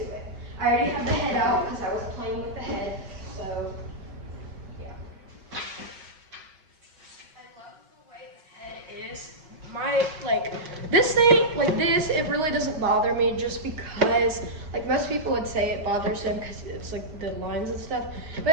it. I already have the head out because I was playing with the head. So yeah. I love the way the head is. This thing, like this, it really doesn't bother me just because, like most people would say it bothers them because it's like the lines and stuff.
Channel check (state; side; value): late; left; 6.2 ms